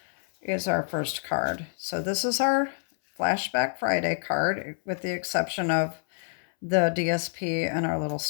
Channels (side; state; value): right; silent; 60 dB below the other